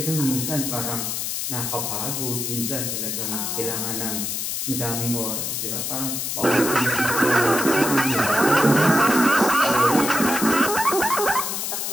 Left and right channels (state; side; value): noise; left; hiss, 3 dB below the sound